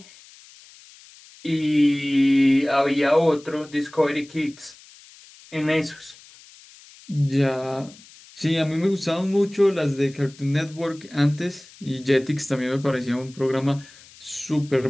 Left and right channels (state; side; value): noise; left; hiss, 23 dB below the sound